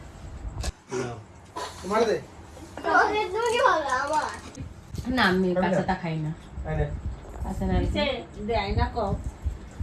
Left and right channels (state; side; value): identical; both; correlation 1.00